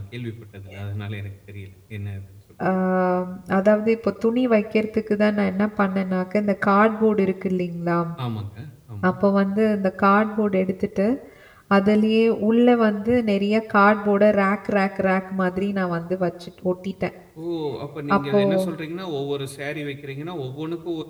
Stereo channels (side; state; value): both; identical; correlation 1.00